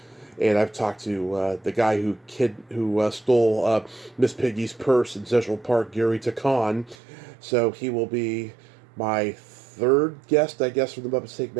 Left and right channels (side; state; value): left; drops out; at 7.0 s